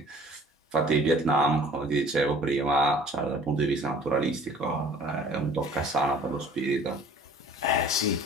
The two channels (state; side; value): normal; both; correlation 0.49